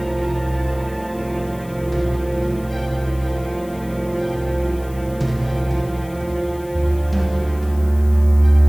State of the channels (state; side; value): noise; left; hiss, 22 dB below the sound